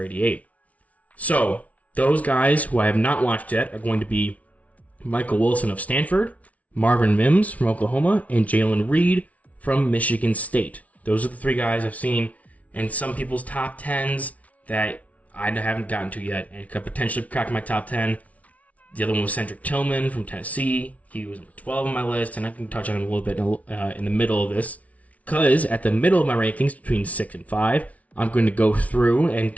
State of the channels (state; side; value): late; right; 0.068 ms